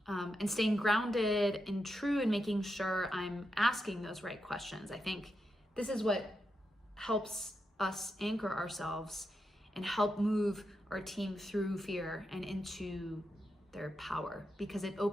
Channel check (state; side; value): normal; both; correlation 0.86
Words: and staying grounded and true and making sure I'm asking those right questions. I think this is what helps us anchor ourselves and help move our team through fear and into their power, because it